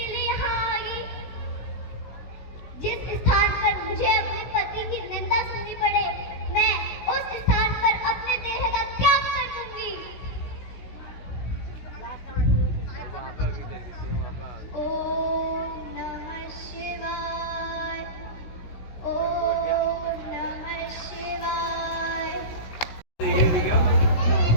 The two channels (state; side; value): late; right; 16 ms